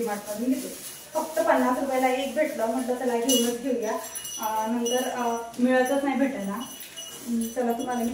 घेते. फक्त 50 रुपयाला एक भेटलं म्हटलं चला घेऊनच घेऊया. नंतर मिळतच नाही भेटेल ना चला तुम्हाला मी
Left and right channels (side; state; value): both; identical; correlation 1.00